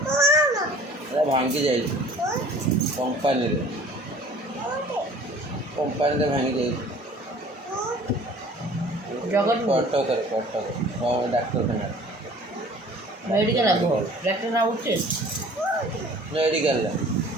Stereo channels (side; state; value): both; normal; correlation 0.49